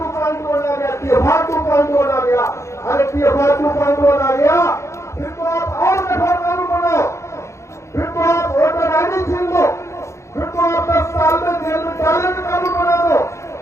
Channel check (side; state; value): right; late; 0.14 ms